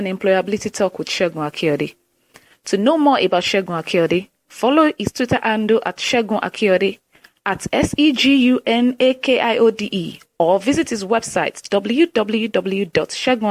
Employability Talk with Segun Akiode. To know more about Segun Akiode, follow his Twitter handle at Segun Akiode, at SEGUNAKIODE, or visit his website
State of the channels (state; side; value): identical; both; correlation 1.00